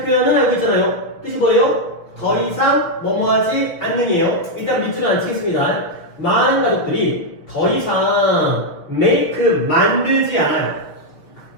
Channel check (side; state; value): right; late; 6.1 ms